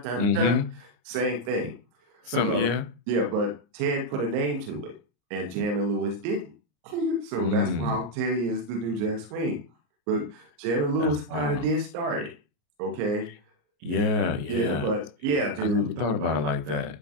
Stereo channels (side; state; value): left; late; 34 ms